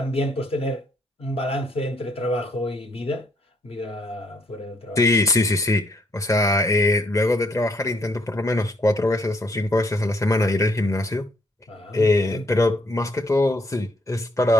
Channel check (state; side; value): normal; both; correlation 0.70